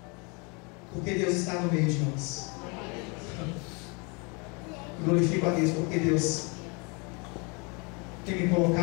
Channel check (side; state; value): right; quieter; 31.4 dB